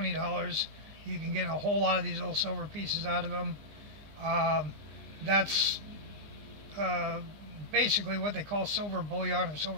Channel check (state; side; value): late; left; 20 ms